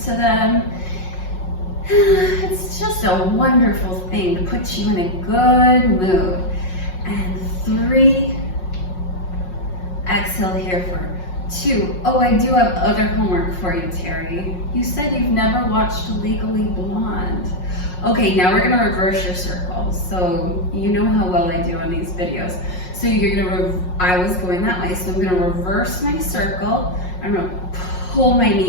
to them. It's just a wonderful thing to put you in a good mood. And 3, exhale here for 2. Oh, I do have other homework for you, Terri. You said you've never watched Legally Blonde. Okay, now we're gonna reverse your circle. So you know how well I do on these videos. So you're gonna, I was going that way, so I'm gonna reverse my circle. I'm gonna pull my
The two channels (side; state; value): right; late; 5.5 ms